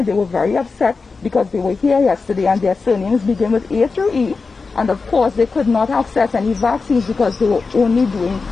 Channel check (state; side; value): quieter; right; 4.4 dB